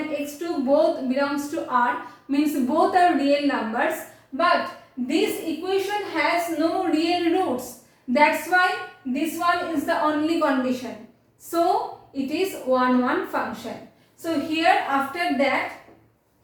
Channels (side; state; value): both; identical; correlation 1.00